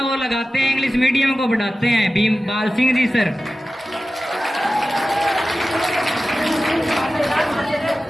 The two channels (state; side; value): normal; both; correlation 0.94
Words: वो लगाते हैं, इंग्लिश मीडियम को बढ़ाते हैं। भीम बाल सिंह जी सर।